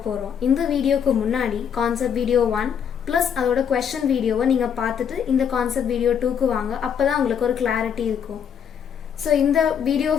போறோம். இந்த வீடியோக்கு முன்னாடி கான்செப்ட் வீடியோ 1 ப்ளஸ் அதோட क्वेश्चन வீடியோவை நீங்க பார்த்துட்டு இந்த கான்செப்ட் வீடியோ 2க்கு வாங்க. அப்பதான் உங்களுக்கு ஒரு கிளாரிட்டி இருக்கும். ஸோ இந்த வீடியோ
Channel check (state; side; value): quieter; right; 7.9 dB